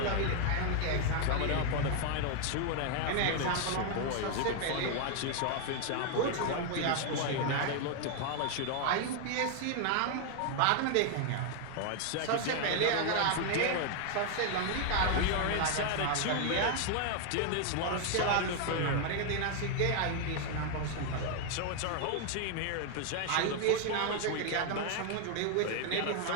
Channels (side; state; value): both; different; correlation 0.00